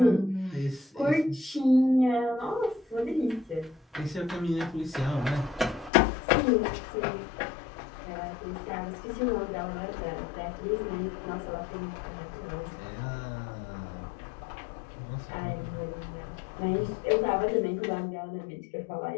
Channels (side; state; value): right; drops out; at 5.9 s